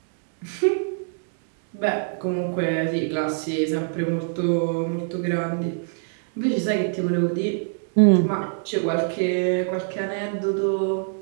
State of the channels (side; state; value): left; silent; digital silence